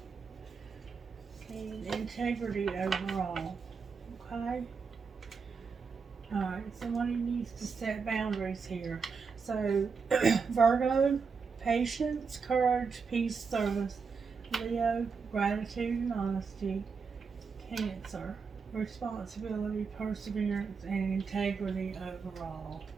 and integrity overall. Okay? Alright, somebody needs to set boundaries here. So, Virgo, patience, courage, peace, service. Leo, gratitude and honesty. Cancer, responsibility, perseverance, and integrity overall.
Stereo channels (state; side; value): quieter; left; 5.4 dB